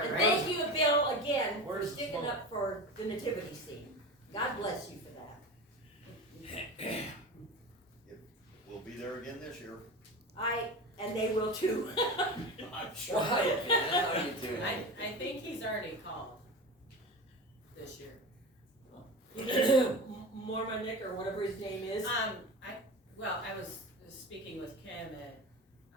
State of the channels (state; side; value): normal; both; correlation 0.28